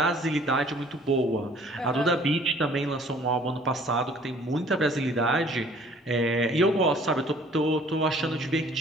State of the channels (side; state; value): both; normal; correlation 0.55